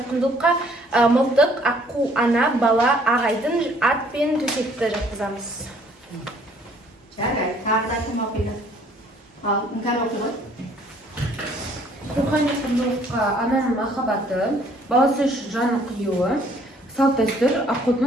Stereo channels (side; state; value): both; normal; correlation 0.60